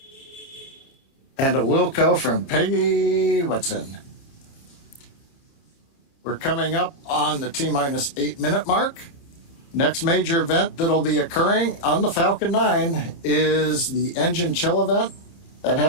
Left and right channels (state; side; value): late; right; 29 ms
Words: And a Wilco from Peggy Whitson. We're coming up on the T-minus 8-minute mark. Next major event that'll be occurring on the Falcon 9 is the engine chill event. That